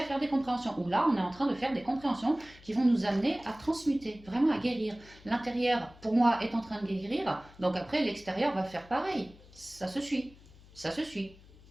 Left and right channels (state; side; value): noise; left; hum, 23 dB below the sound